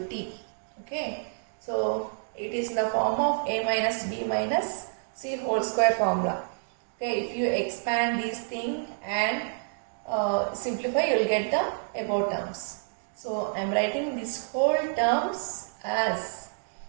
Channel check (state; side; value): silent; left; digital silence